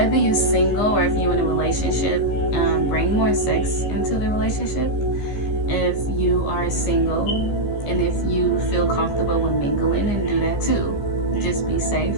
you're single or if you're in a relationship, bring more sex into the relationship. If you are single and if you feel comfortable with mingling, and do that too. Just be safe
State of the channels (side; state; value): right; late; 15 ms